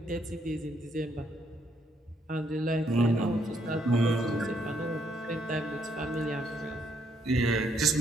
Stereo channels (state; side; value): normal; both; correlation 0.72